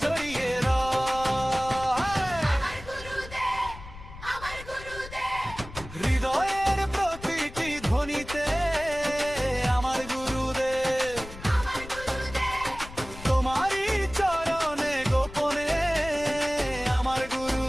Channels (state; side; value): noise; left; rumble, 14 dB below the sound